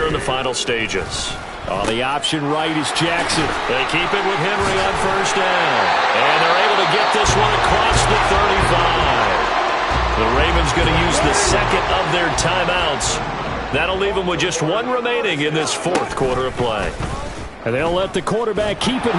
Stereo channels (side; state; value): both; identical; correlation 1.00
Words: in the final stages. On the option right is Jackson. They keep it with Henry on first down. And they're able to get this one across the 35. The Ravens going to use the second of their timeouts. That'll leave them with just 1 remaining in this 4th quarter of play. And they'll let the quarterback keep it